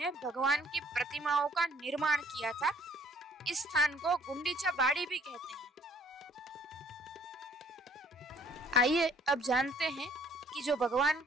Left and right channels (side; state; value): both; normal; correlation 0.59